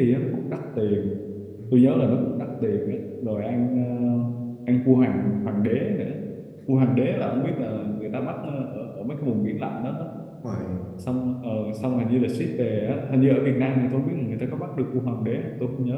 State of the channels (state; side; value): identical; both; correlation 1.00